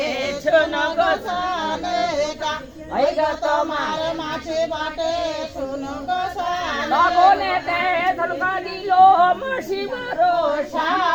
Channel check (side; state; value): both; identical; correlation 1.00